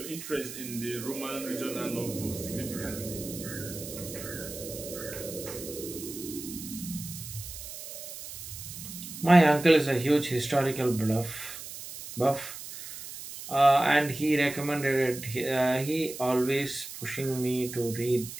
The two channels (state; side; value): noise; right; hiss, 11 dB below the sound